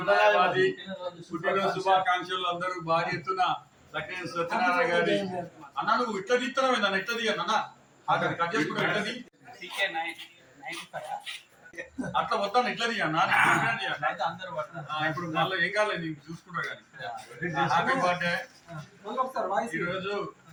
పుట్టినరోజు శుభాకాంక్షలు. అందరూ భారీ ఎత్తున లక్ష్మీ సత్యనారాయణ గారి అన్న నువ్వు ఇట్లా తీస్తున్నావు అన్న, ఇట్లా తీయన్న అన్న కట్ చేసుకుంటా ఇట్లా తీ. అట్లా వద్దాను ఇట్లా తీయన్నా ఇప్పుడు మళ్ళీ ఏం కాలేదు నీకు చూసుకుంటా కానీ. Happy birthday. ఈరోజు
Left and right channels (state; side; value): identical; both; correlation 1.00